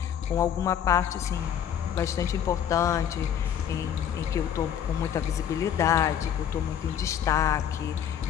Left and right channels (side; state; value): right; quieter; 9.2 dB